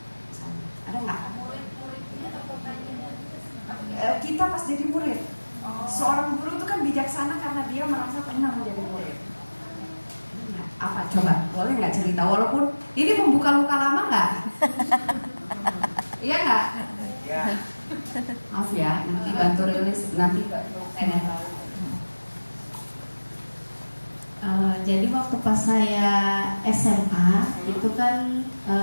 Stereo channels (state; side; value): inverted; both; correlation -1.00